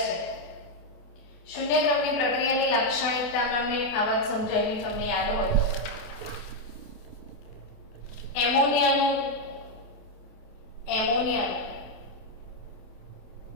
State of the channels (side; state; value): right; late; 28 ms